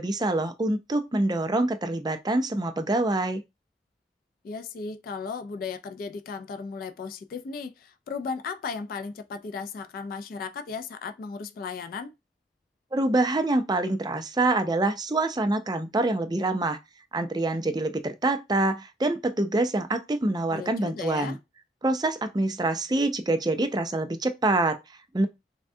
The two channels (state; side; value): normal; both; correlation 0.61